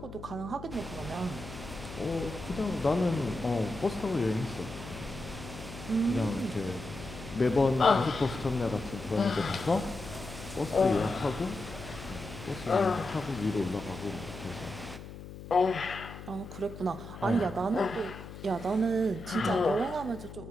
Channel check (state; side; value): noise; left; hum, 13 dB below the sound